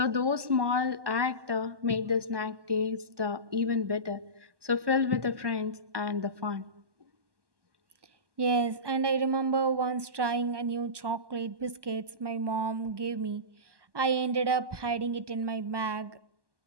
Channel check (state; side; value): late; left; 1.2 ms